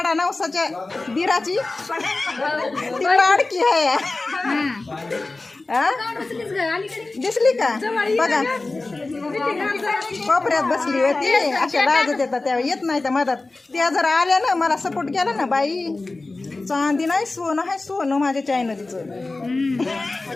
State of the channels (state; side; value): quieter; right; 3.3 dB